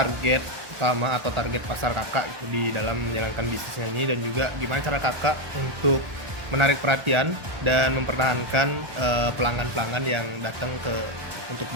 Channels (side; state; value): left; late; 1.2 ms